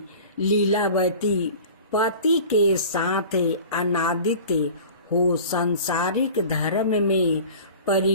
लीलावती, पति के साथ अनादित हो संसारिक धर्म में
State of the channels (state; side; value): inverted; both; correlation -0.41